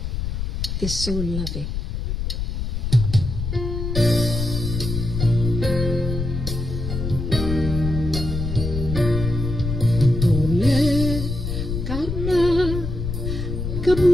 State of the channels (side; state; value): left; noise; rumble, 3 dB below the sound